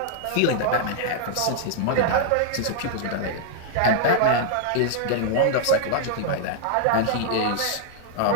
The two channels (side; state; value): both; different; correlation -0.01